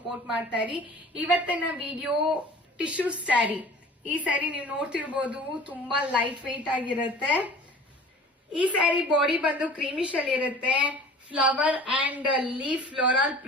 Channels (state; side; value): normal; both; correlation 0.44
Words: ಮಾಡ್ತಾ ಇರಿ. ಇವತ್ತಿನ ವಿಡಿಯೋ ಟಿಶ್ಯೂ ಸ್ಯಾರಿ. ಈ ಸ್ಯಾರಿ ನೀವು ನೋಡ್ತಿರ್ಬೋದು, ತುಂಬಾ ಲೈಟ್ ವೆಯ್ಟ್ ಆಗಿರುತ್ತೆ. ಈ ಸ್ಯಾರಿ ಬಾಡಿ ಬಂದು ಕ್ರೀಮಿಶ್ ಅಲ್ಲಿ ಇರುತ್ತೆ. Flower and leaf floral